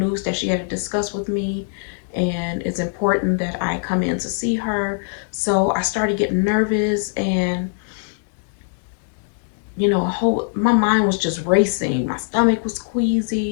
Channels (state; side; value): silent; right; digital silence